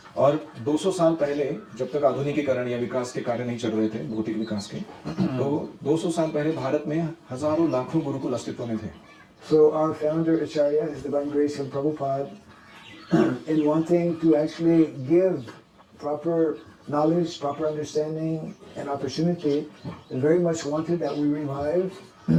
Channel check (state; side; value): identical; both; correlation 1.00